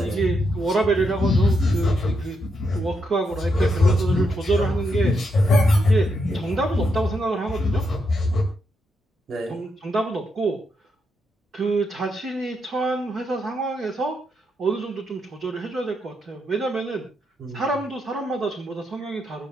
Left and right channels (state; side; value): normal; both; correlation 0.81